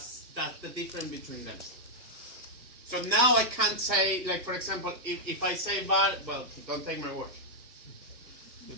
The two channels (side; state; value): left; late; 1.4 ms